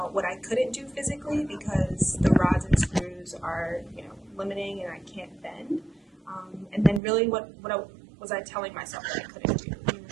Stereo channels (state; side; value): drops out; left; at 7.0 s